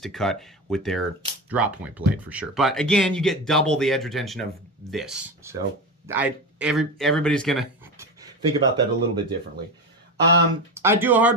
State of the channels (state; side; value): normal; both; correlation 0.21